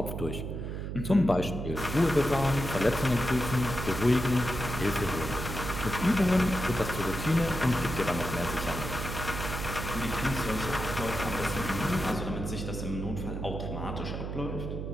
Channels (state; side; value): noise; right; hum, 5 dB below the sound